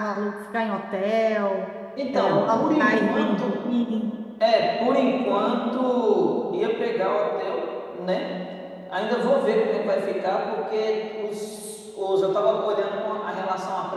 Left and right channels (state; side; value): identical; both; correlation 1.00